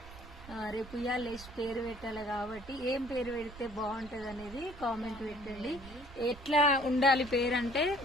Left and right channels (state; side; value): noise; right; rumble, 16 dB below the sound